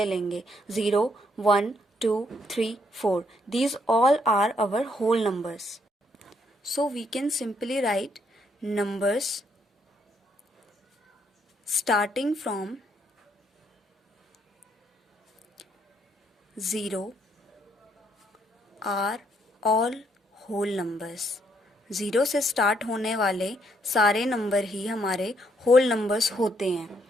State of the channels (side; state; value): both; normal; correlation 0.71